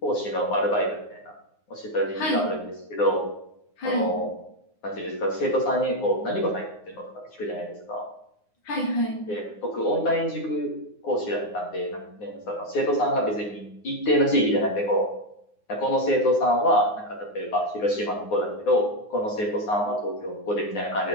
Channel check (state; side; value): late; right; 9.6 ms